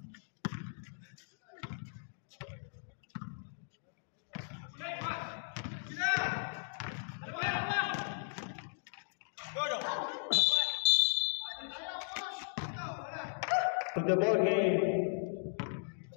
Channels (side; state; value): right; silent; digital silence